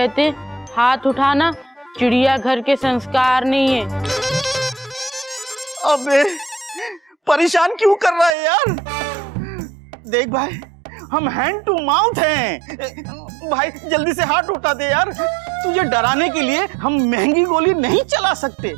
हाथ उठाना चिड़ियाघर के संस्कार नहीं है। अबे परेशान क्यों कर रहा है यार? देख भाई, हम हैंड टू माउथ हैं। भाई जल्दी से हाथ उठा दे यार, तुझे डराने के लिए हम महंगी गोली नहीं चला सकते।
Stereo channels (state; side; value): drops out; left; at 8.3 s